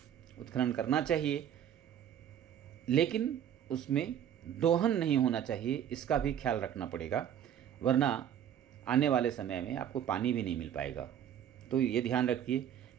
उत्खनन करना चाहिए, लेकिन उसमें दोहन नहीं होना चाहिए, इसका भी ख्याल रखना पड़ेगा, वरना आने वाले समय में आपको पानी भी नहीं मिल पाएगा। तो ये ध्यान रखिए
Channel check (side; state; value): left; quieter; 9.8 dB